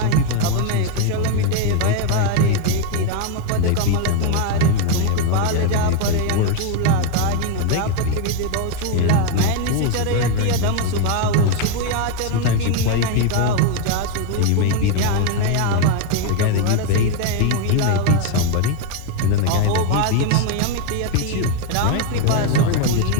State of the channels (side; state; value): both; different; correlation 0.01